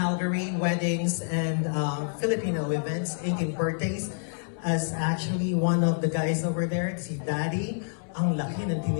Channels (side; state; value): right; silent; 60 dB below the other